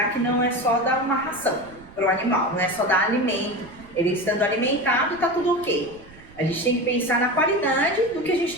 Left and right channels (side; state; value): right; noise; rumble, 22 dB below the sound